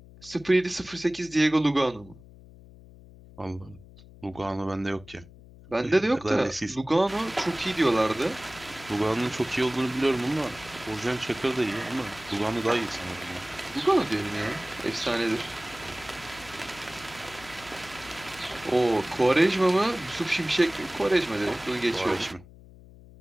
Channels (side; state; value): left; noise; hum, 21 dB below the sound